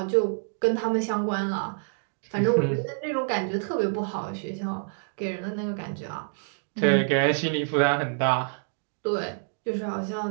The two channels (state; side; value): silent; left; digital silence